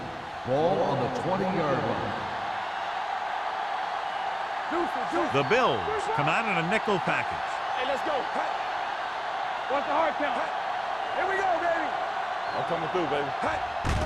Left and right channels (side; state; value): both; identical; correlation 1.00